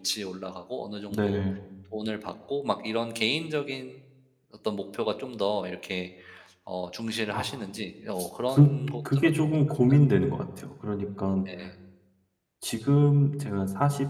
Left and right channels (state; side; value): identical; both; correlation 1.00